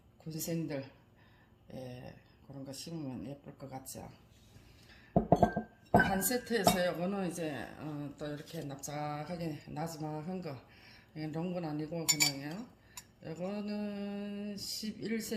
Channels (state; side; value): identical; both; correlation 1.00